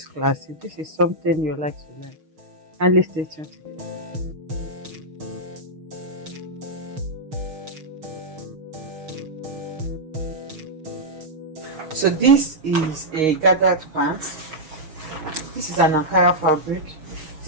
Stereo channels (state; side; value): late; left; 6.4 ms